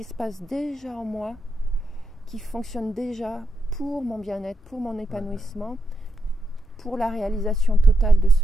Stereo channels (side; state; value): both; normal; correlation 0.83